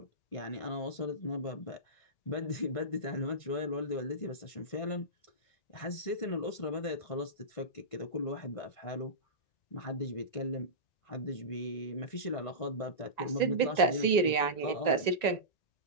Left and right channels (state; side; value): late; right; 1.9 ms